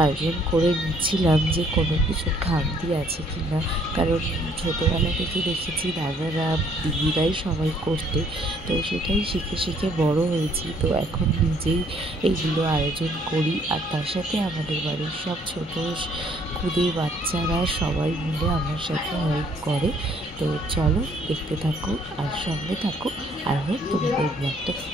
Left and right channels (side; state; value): both; normal; correlation 0.64